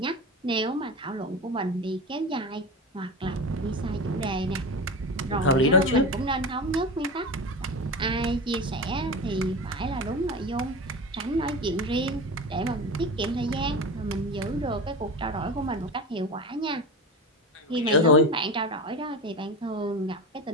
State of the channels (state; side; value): normal; both; correlation 0.26